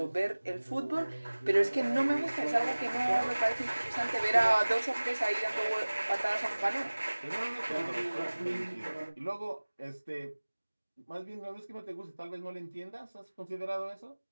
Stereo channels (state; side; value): inverted; both; correlation -1.00